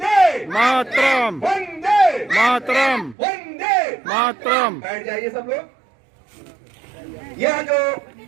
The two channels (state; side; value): drops out; left; at 3.2 s